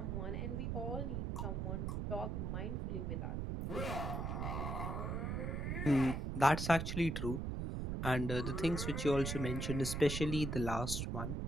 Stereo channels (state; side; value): noise; right; rumble, 2 dB below the sound